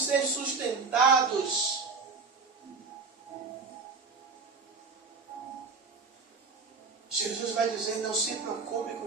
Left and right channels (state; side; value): quieter; left; 4.6 dB